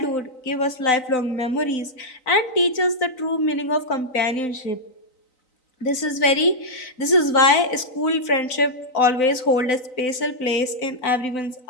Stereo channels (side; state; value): right; late; 3.9 ms